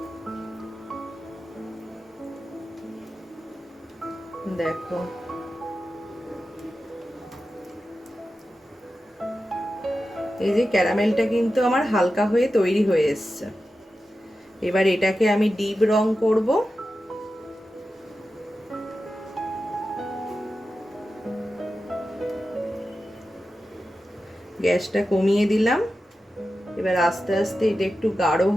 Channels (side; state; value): both; normal; correlation 0.92